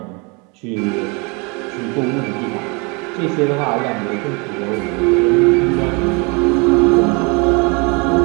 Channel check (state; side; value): quieter; left; 30.5 dB